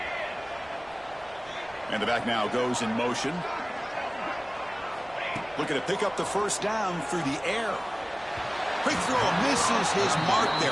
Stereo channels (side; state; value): right; noise; rumble, 25 dB below the sound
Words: And the back now goes in motion. Looking to pick up the first down through the air. Quick throw, misses his mark there,